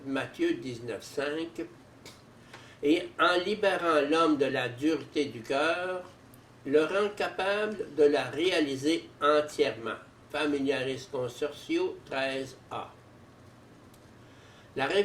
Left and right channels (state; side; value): identical; both; correlation 1.00